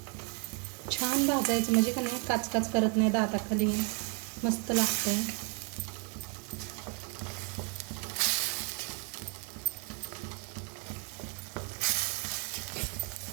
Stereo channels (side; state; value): left; quieter; 37.4 dB